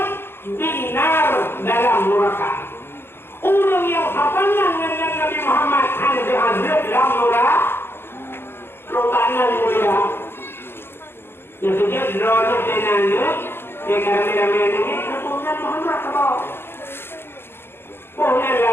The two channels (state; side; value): late; right; 0.11 ms